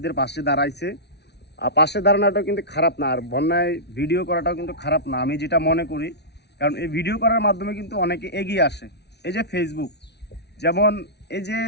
পাশে দাঁড়াইছে। আর পাশে দাঁড়ানোটাও কিন্তু খারাপ না, আর বন্যায় ভিডিও করাটাও কিন্তু খারাপ না, আমি যেটা মনে করি। কারণ এই ভিডিও করার মাধ্যমে কিন্তু অনেকে এগিয়ে আসে। এই যে ফেসবুক, যেমন এই যে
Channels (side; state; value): right; late; 0.49 ms